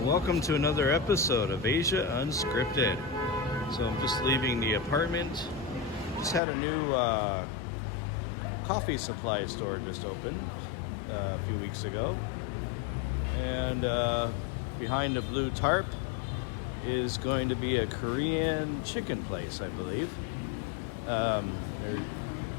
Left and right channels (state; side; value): drops out; right; at 6.4 s